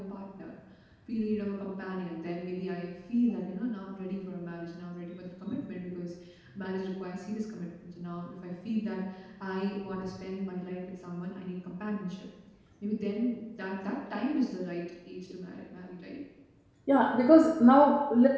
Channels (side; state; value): both; identical; correlation 1.00